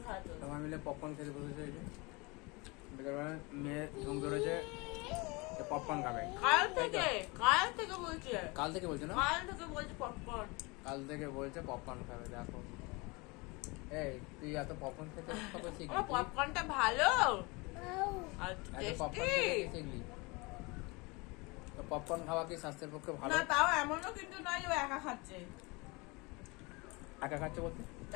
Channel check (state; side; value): quieter; right; 26.6 dB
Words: খাওয়াতে হবে। সবাই মিলে পপকর্ন খেতে বসেছে। এই যে বিকেলবেলায় মেয়ে ঘুম ধরেছে, পপকর্ন খাবে। কাল থেকে বলছে, কাল থেকে বলছে না, কাল থেকে বলছে পপকর্ন। কাল থেকে বলছে পপকর্ন খাবে। দেখো এই তুই এত পপকর্ন খেতে কবে শিখলি? আমার পপকর্নটা ভালো আর এত পপকর্ন টেস্টি। খেতে শিখলি? তো পপকর্ন খাওয়া কি স্বাস্থ্যের পক্ষে ভালো? না তাও এমনও কিন্তু নয় যে ও একা খাচ্ছে। একা খাচ্ছে বলতে?